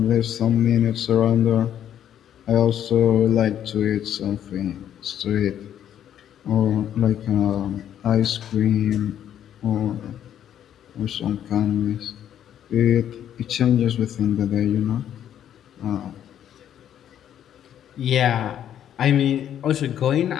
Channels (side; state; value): right; quieter; 10.3 dB